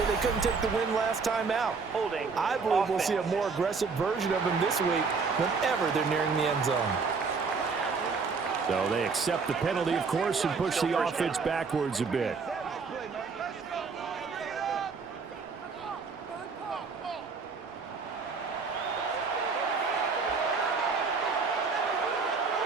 they couldn't take the win last time out. I believe we'll see a more aggressive version of him this week whenever they're nearing the end zone. So they accept the penalty, of course, and push the offense backwards a bit.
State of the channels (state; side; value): quieter; left; 4.9 dB